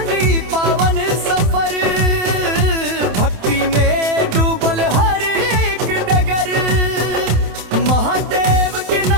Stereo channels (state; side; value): late; left; 27 ms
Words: पावन सफर, भक्ति में डूबल हर एक डगर। महादेव के